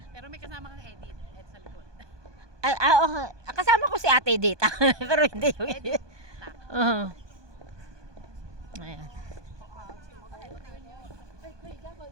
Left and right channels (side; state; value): left; late; 1.2 ms